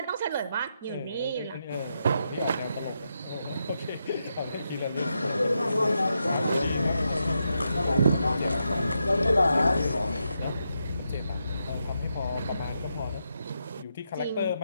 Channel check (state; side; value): inverted; both; correlation -0.84